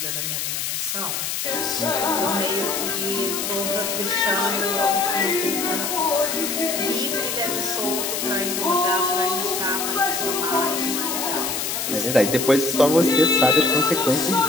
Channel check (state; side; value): noise; left; hiss, 2 dB below the sound